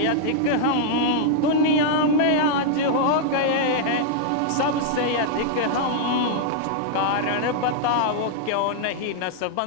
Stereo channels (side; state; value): both; different; correlation -0.01